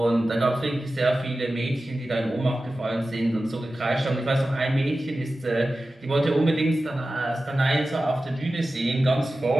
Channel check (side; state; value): both; normal; correlation 0.94